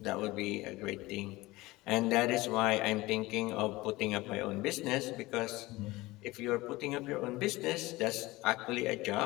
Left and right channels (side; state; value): right; quieter; 20.1 dB